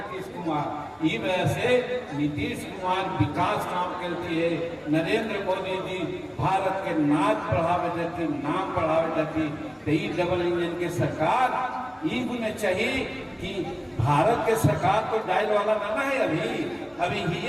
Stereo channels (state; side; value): identical; both; correlation 1.00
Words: कुमार। ई वजह से नीतीश कुमार विकास काम करती है। नरेंद्र मोदी जी भारत के नाच बढ़ावे देती, नाम बढ़ावे देती। तो ई डबल इंजन के सरकार ई गुने चाहिए कि भारत के सरकार तो डायल वाला ना है अभी ही